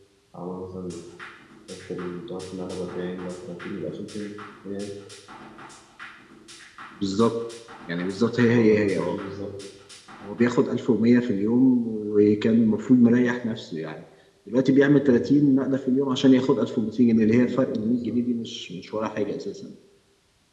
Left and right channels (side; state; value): both; identical; correlation 1.00